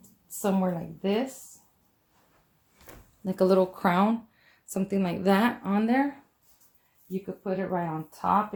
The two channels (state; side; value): identical; both; correlation 1.00